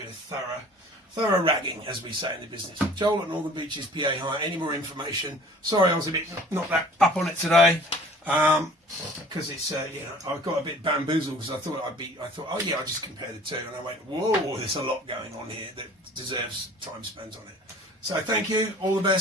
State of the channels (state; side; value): normal; both; correlation 0.48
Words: a thorough ragging, as we say in the business. Joel at Northern Beaches, PA Hire. Any more information? Sorry, I was a bit not that up on it today. Because it's you know, I got a bit bamboozled because I thought oh yeah, I'll just compare the two, and I went, whoa, there's a lot going on here that deserves time spent on it. So thank you, all the